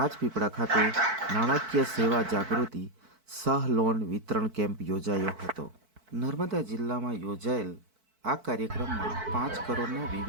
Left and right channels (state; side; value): late; left; 4.5 ms